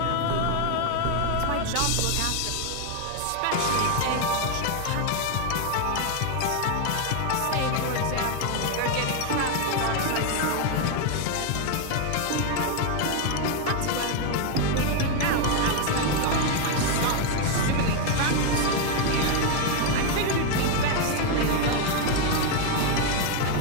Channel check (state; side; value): different; both; correlation 0.01